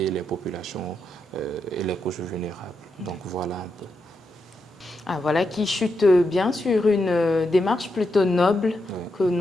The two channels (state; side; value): normal; both; correlation 0.84